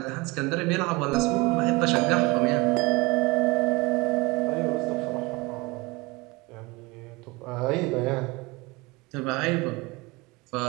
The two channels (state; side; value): quieter; left; 23.6 dB